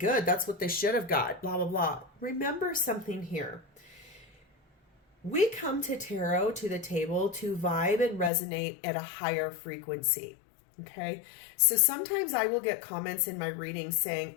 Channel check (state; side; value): drops out; right; at 8.3 s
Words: that's what they should have got, blah, blah, blah. Remember something here. We come to tarot, to the table, to vibe and resonate at a higher frequency. Okay. So sometimes I will get comments in my reading saying,